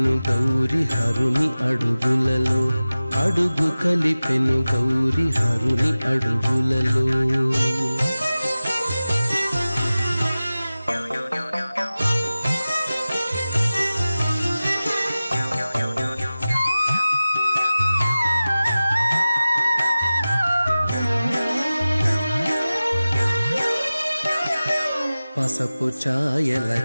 గౌరి హరుని అడుగులలో, అడుగు కలిపెను గౌరి హరుని అడుగులలో. పసపు ఛాయల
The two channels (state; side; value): inverted; both; correlation -0.96